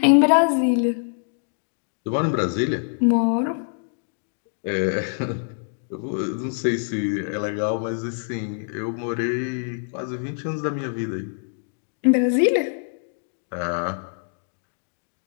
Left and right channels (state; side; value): silent; right; digital silence